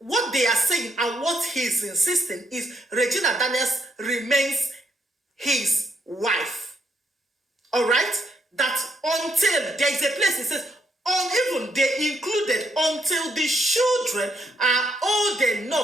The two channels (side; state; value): both; normal; correlation 0.74